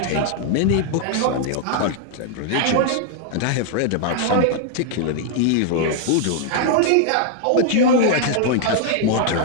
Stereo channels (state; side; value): different; both; correlation 0.00